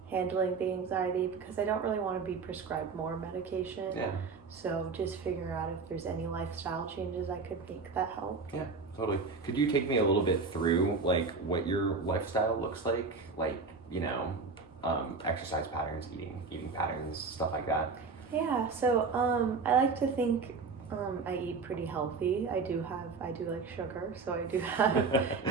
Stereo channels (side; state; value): left; quieter; 4.5 dB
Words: handling the anxiety, because I don't really want to be prescribed more medication. Yeah. So just figure out if there's any lifestyle changes I could make that help. Yeah, totally. Could you take me a little bit through like what your lifestyle looks like? Like, exercise patterns, eating patterns, stuff like that. Yeah, so I like to think I eat pretty healthy. I do like sugar, so I do have